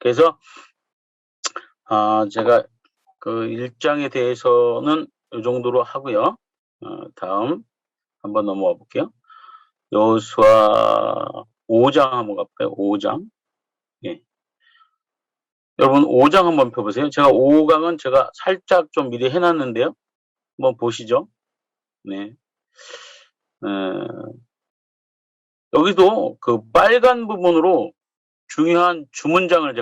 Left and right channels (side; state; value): both; identical; correlation 1.00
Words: 제가 그 1장에 대해서는 이 정도로 하고요. 다음 한번 넘어가 볼게요. 여호수아 5장 한번 가볼까요? 5장. 예. 여러분 5장 한번 펴보세요. 제가 5강은 제가 살짝 좀 미리 해놨는데요. 한번 보시죠. 네. 여기도 그 빨간 부분으로 중요한 주문장을